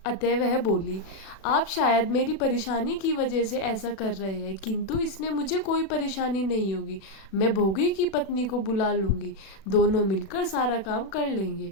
अतः वह बोली, आप शायद मेरी परेशानी की वजह से ऐसा कर रहे हैं, किंतु इसमें मुझे कोई परेशानी नहीं होगी। मैं भोगी की पत्नी को बुला लूंगी, दोनों मिलकर सारा काम कर लेंगे।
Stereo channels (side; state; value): right; late; 36 ms